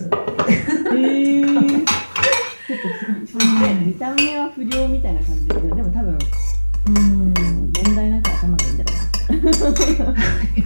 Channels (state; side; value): inverted; both; correlation -1.00